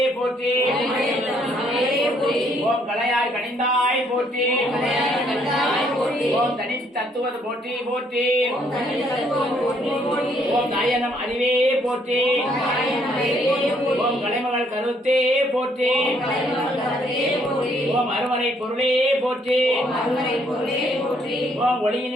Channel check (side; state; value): both; normal; correlation 0.68